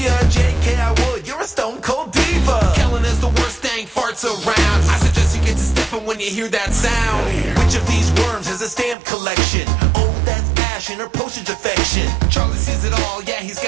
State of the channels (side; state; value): left; drops out; at 9.0 s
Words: a JK, I would, you're a stone cold diva. Kellen is the worst dang farts around. I suggest you get to stepping when you hear that sound. Which of these worms has a stamp collection? Oh, that's Ash and her postage affection. Charlie sees it all, yeah, he's